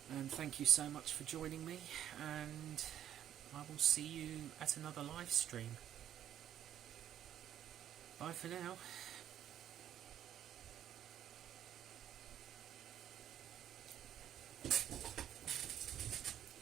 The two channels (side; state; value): left; quieter; 10.9 dB